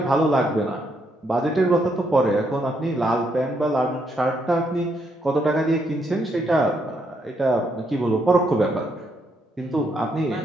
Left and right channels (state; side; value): normal; both; correlation 0.76